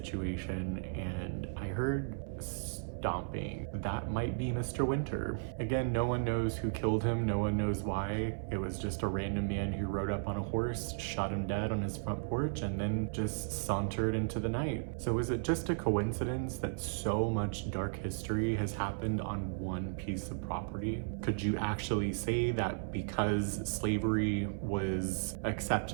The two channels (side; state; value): left; silent; 54 dB below the other